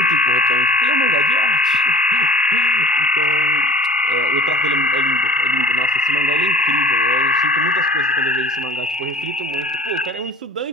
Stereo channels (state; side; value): normal; both; correlation 0.43